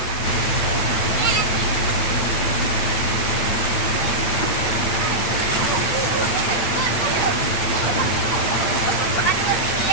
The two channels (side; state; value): right; late; 8.8 ms